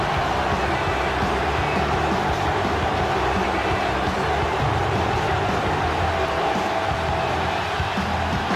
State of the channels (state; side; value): identical; both; correlation 1.00